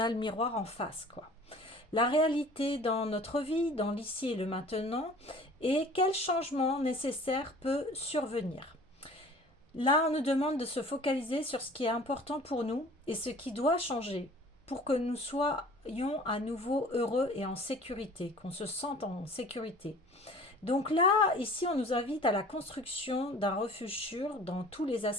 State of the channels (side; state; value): both; normal; correlation 0.47